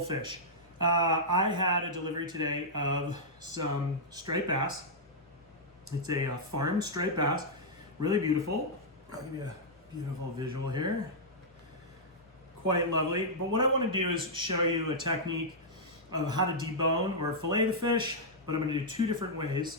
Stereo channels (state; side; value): normal; both; correlation -0.09